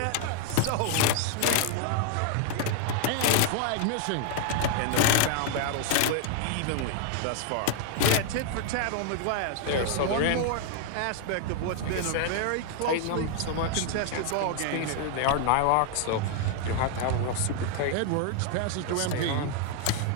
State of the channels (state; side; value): different; both; correlation 0.00